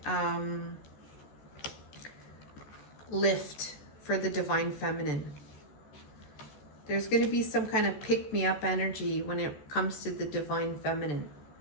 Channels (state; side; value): late; right; 14 ms